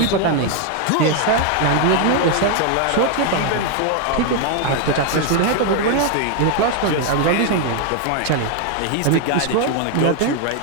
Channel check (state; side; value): different; both; correlation 0.01